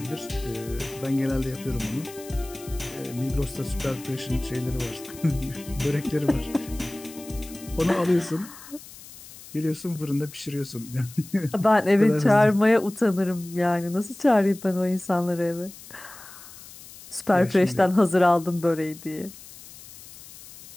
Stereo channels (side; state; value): left; noise; hiss, 18 dB below the sound